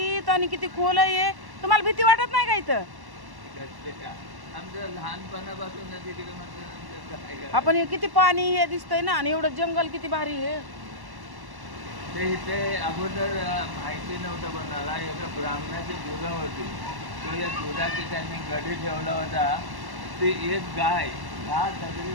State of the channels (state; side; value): late; left; 1.1 ms